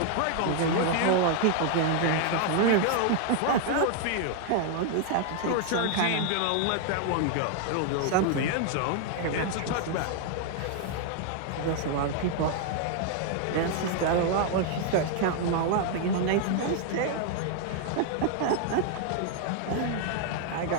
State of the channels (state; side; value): different; both; correlation 0.00